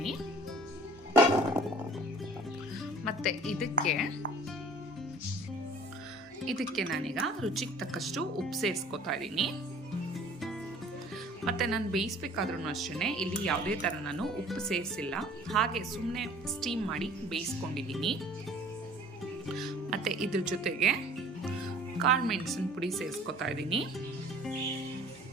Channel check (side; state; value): both; normal; correlation 0.49